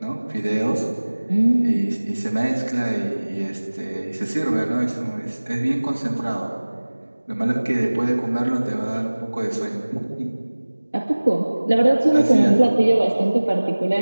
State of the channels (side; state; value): both; inverted; correlation -1.00